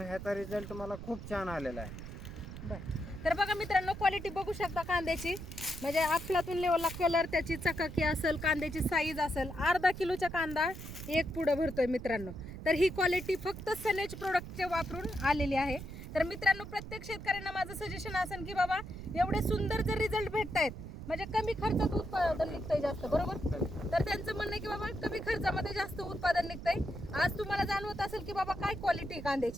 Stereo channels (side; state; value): right; noise; rumble, 10 dB below the sound